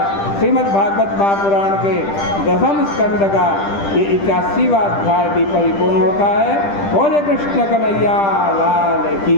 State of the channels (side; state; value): right; late; 10 ms